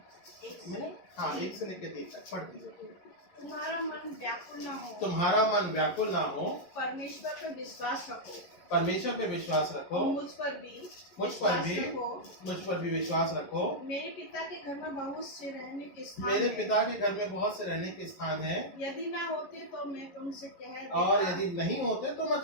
मैंने 1 से लेके 3 तक पढ़ दीजिए। तुम्हारा मन व्याकुल ना हो, तुम्हारा मन व्याकुल ना हो, परमेश्वर पर विश्वास रखो, परमेश्वर पे विश्वास रखो, और मुझ पर भी विश्वास रखो। मेरे पिता के घर में बहुत से रहने के स्थान मेरे हैं। पिता के घर में बहुत से रहने के स्थान हैं। यदि ना होते तो मैं तुमसे कह देता, और यदि नहीं होते तो मैं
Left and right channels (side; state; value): right; late; 11 ms